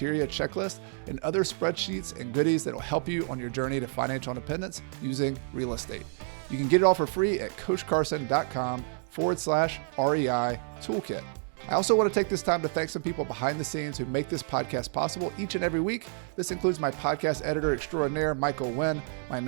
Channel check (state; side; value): silent; left; 58 dB below the other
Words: checklist, and other spreadsheets and goodies that will help you on your journey to financial independence using real estate. You can get it all for free at coachcarson.com/REI toolkit. I also want to take this time to thank some people behind the scenes who make this podcast possible each and every week. This includes my podcast editor extraordinaire, Michael Wynn, my